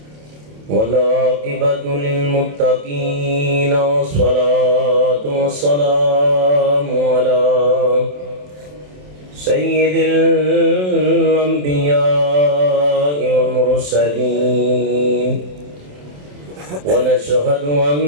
والعاقبة للمتقين والصلاة والسلام على سيد الأنبياء والمرسلين ونشهد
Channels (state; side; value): late; left; 27 ms